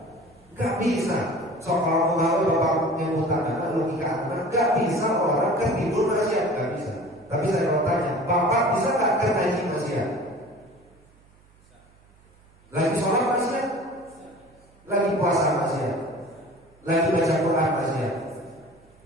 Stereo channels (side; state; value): right; noise; hum, 30 dB below the sound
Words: Nggak bisa. So kalau mau bapak nyebutan logika anak, nggak bisa orang kan tidur maksiat, nggak bisa. Tapi saya mau tanya, bapak bisa nggak kan ngaji maksiat? Lagi sholat maksiat, lagi puasa maksiat, lagi baca Quran maksiat,